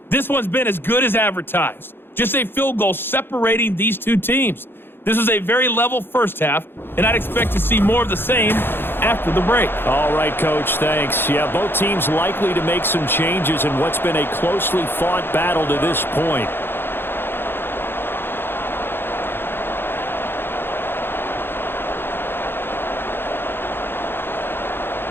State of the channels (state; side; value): late; right; 0.10 ms